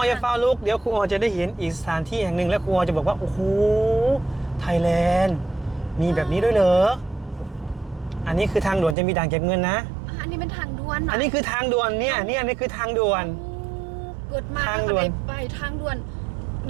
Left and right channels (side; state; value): left; drops out; at 9.0 s